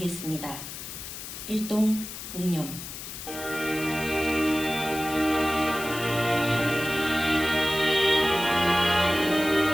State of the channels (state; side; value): noise; left; hiss, 10 dB below the sound